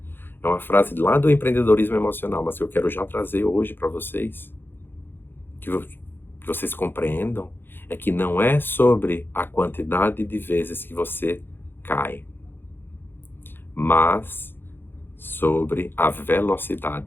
É uma frase lá do empreendedorismo emocional, mas que eu quero já trazer hoje para vocês, que vocês compreendam, é que não é sobre a quantidade de vezes que você cai, mas sobre a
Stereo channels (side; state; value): right; late; 0.10 ms